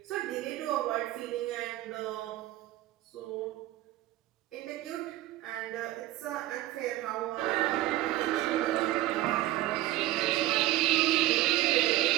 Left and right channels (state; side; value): quieter; left; 15.5 dB